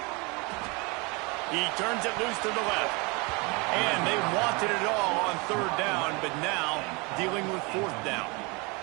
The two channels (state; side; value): quieter; left; 28.2 dB